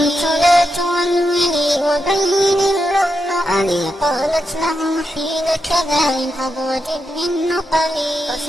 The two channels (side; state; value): both; normal; correlation 0.85